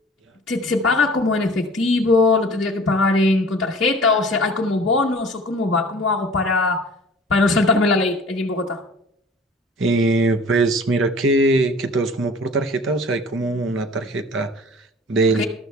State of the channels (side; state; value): both; normal; correlation 0.46